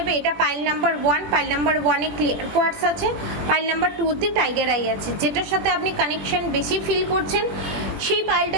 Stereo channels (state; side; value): late; left; 21 ms